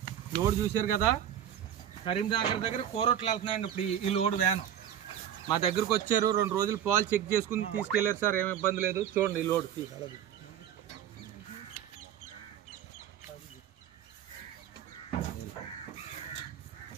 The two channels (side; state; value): left; quieter; 10.0 dB